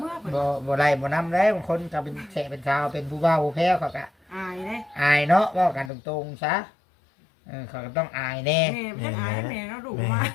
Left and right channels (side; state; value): right; drops out; at 5.9 s